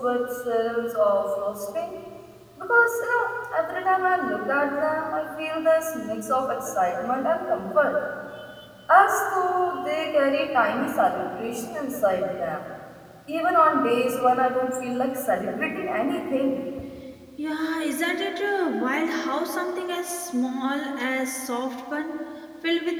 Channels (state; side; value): identical; both; correlation 1.00